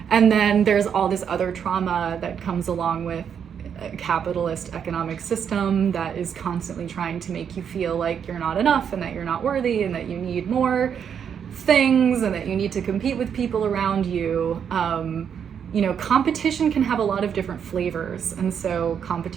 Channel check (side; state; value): left; quieter; 7.8 dB